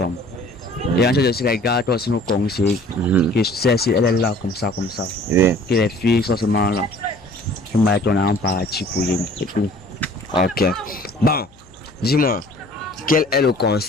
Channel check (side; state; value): left; noise; hum, 29 dB below the sound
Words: Et on cherche aussi les gars, toi aussi nous conseils. Que celle-ci, elle est là comme ça, comme ça. Oui. Que les filles sont seulement là. Tu mets ton argent parti pour rien. C'est tout. Ok. Bon, dis-moi, quel est le